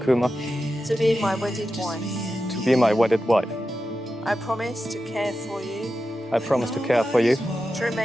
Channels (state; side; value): normal; both; correlation 0.91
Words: to be my wedded wife. to be my wedded wife. I promise to care for you, I promise to care for you, to